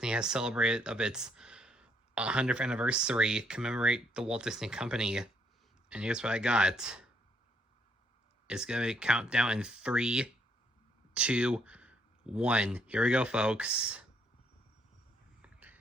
has celebrated of its 100th anniversary, commemorate the Walt Disney Company. And here's what I got. It's gonna count down in 3, 2, 1. Here we go, folks.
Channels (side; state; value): both; normal; correlation 0.70